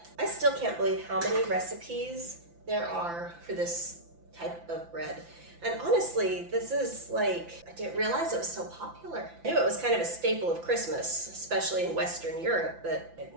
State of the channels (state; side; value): late; left; 5.9 ms